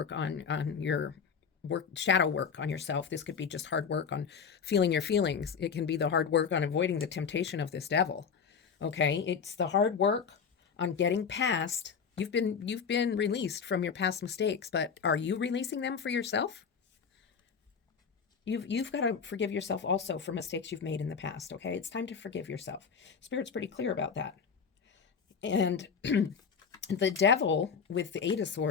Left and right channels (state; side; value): quieter; right; 6.3 dB